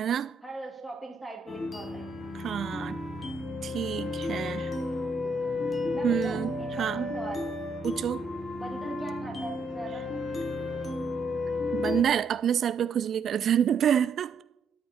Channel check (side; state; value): left; quieter; 3.9 dB